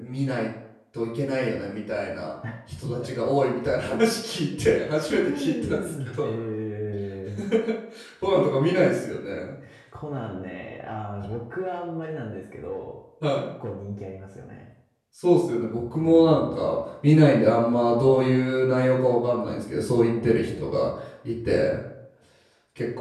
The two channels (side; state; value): both; identical; correlation 1.00